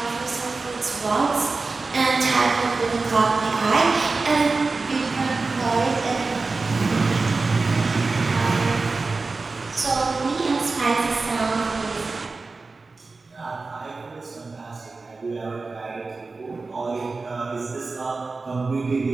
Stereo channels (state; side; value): quieter; left; 3.9 dB